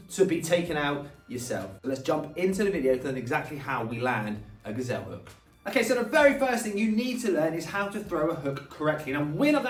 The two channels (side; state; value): both; identical; correlation 1.00